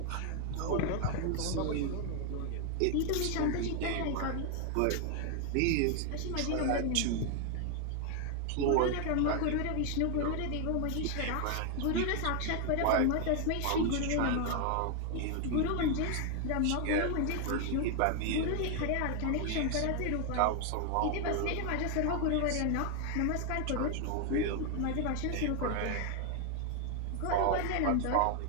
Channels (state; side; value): different; both; correlation 0.01